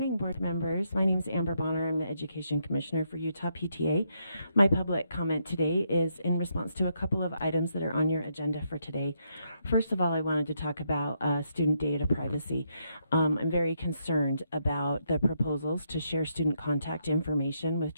board members. My name is Amber Bonner. I'm the Education Commissioner for Utah PTA. My public comment today is in response to a couple of items that are on your agenda for today. First of all, I wanted to talk about student data privacy. I'm very concerned about the proposals to share student contact information with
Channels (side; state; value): both; inverted; correlation -0.77